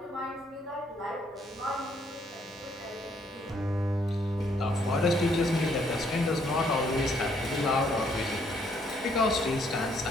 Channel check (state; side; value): normal; both; correlation 0.68